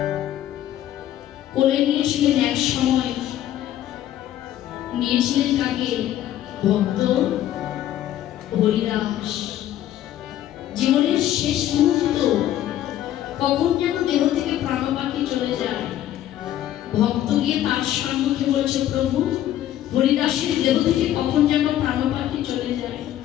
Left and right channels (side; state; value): right; quieter; 12.4 dB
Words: কোলে নিয়েছিলেন? এক সময় নিয়েছিলেন কাকে? ভক্ত হরিদাস। জীবনের শেষ মুহূর্ত, কখন যেন দেহ থেকে প্রাণপাখি চলে যায়, ভক্ত গিয়ে তার সম্মুখে বলছে, প্রভু, হরিদাসের দেহ থেকে কখন যেন প্রাণপাখি চলে যায়,